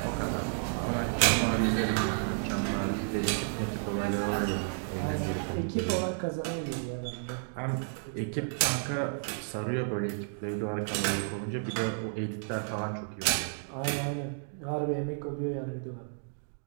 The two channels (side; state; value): left; silent; digital silence